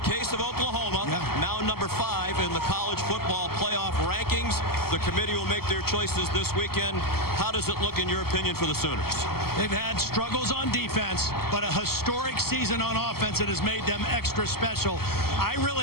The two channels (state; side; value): late; right; 0.95 ms